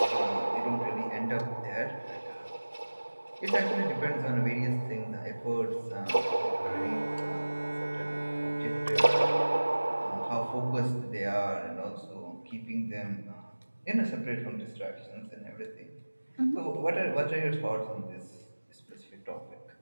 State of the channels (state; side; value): inverted; both; correlation -1.00